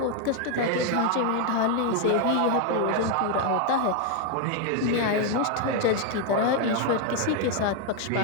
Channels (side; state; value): both; different; correlation 0.01